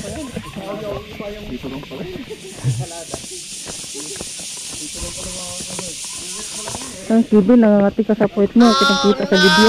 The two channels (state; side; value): identical; both; correlation 1.00